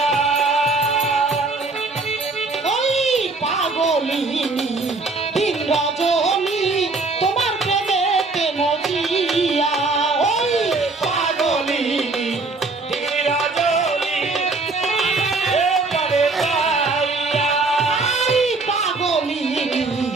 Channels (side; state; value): left; quieter; 3.6 dB